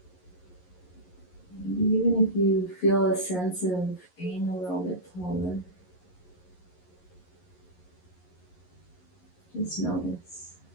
Even if you feel a sense of being a little bit taller, just notice.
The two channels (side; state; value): right; late; 11 ms